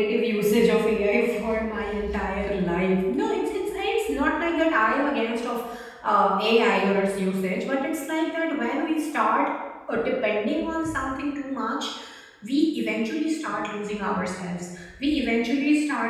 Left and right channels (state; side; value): identical; both; correlation 1.00